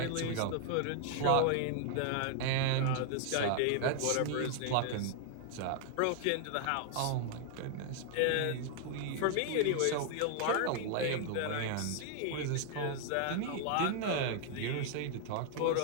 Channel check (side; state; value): both; different; correlation 0.00